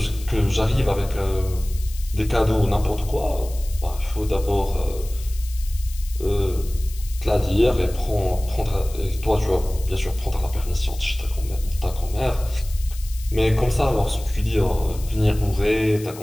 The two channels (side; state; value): left; noise; hiss, 17 dB below the sound